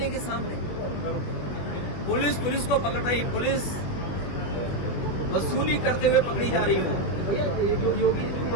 के सामने। पुलिस को पकड़ रही, पुलिस वसूली करते हुए पकड़ी जा रही हो।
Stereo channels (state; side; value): late; right; 21 ms